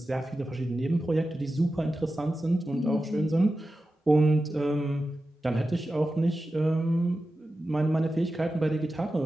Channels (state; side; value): normal; both; correlation 0.92